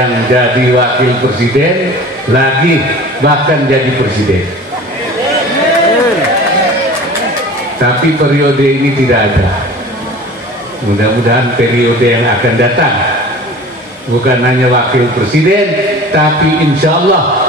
jadi wakil presiden lagi, bahkan jadi presiden. Tapi periode ini tidak ada. Mudah-mudahan periode yang akan datang bukan hanya wakil presiden, tapi insya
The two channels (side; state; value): both; normal; correlation 0.41